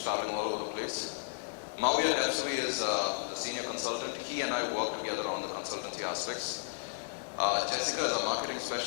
traveling all over the place. Mauya Depsui is the senior consultant. He and I work together on the consultancy aspects. Jessica is our marketing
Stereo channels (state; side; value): silent; right; digital silence